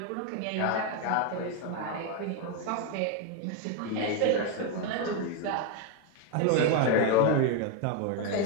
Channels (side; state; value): both; different; correlation 0.01